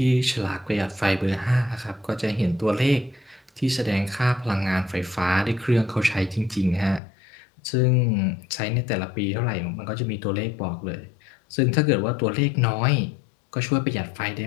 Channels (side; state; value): right; drops out; at 7.0 s